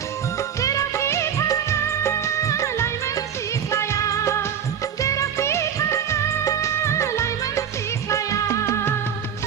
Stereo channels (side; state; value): left; quieter; 8.5 dB